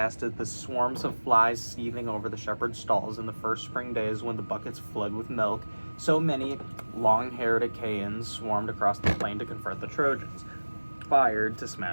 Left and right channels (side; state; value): both; inverted; correlation -1.00